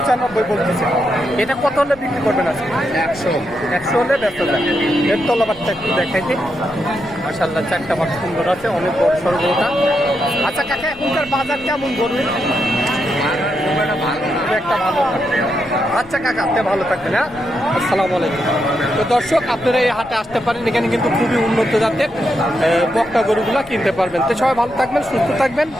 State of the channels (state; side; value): noise; left; rumble, 21 dB below the sound